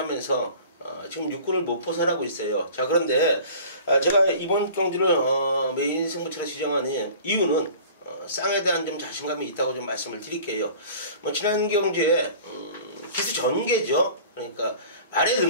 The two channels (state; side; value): inverted; both; correlation -0.44